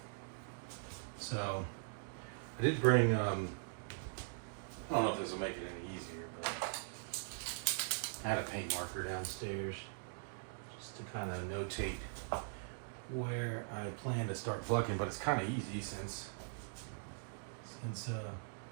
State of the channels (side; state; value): left; silent; digital silence